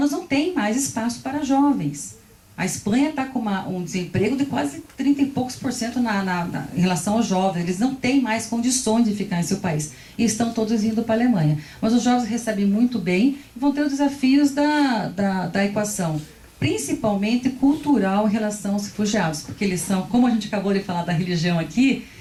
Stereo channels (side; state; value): both; identical; correlation 1.00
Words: não tem mais espaço para jovens. A Espanha está com um desemprego de quase 30 e poucos % em relação aos jovens. Eles não têm mais condições de ficar em seu país. E estão todos indo para a Alemanha. Mas os jovens recebem muito bem e vão ter os desafios da equação, principalmente cultural em relação aos refugiados. Porque eles são, como a gente acabou de falar da religião aqui,